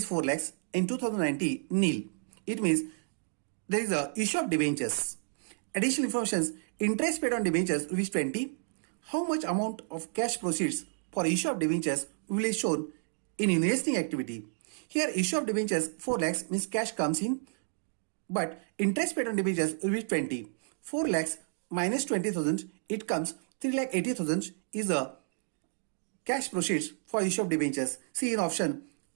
4 lakhs and 2090 nil. It means there is a issue of debentures. Additional informations: interest paid on debentures rupees 20. How much amount of cash proceeds for issue of debentures will be shown in investing activity. Here issue of debentures 4 lakhs means cash comes in, but interest paid on debentures will be 20. 4 lakhs minus 20,000, it comes 3,80,000 is the cash proceeds for issue of debentures. See in option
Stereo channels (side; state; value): left; silent; digital silence